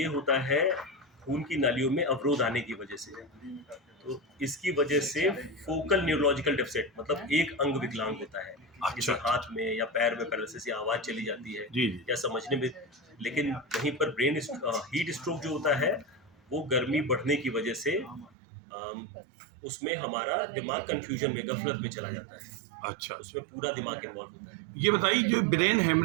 होता है खून की नालियों में अवरोध आने की वजह से। तो इसकी वजह से फोकल न्यूरोलॉजिकल डेफिसिट मतलब एक अंग विकलांग होता है, जैसे हाथ में या पैर में पैरालिसिस या आवाज चली जाती है जी। या समझने में। लेकिन वहीं पर हीट स्ट्रोक जो होता है वो गर्मी बढ़ने की वजह से उसमें हमारा दिमाग कंफ्यूजन में गफलत में चला जाता है। अच्छा, उसमें पूरा दिमाग इन्वॉल्व होता है। ये बताइए जो ब्रेन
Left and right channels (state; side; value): drops out; left; at 18.3 s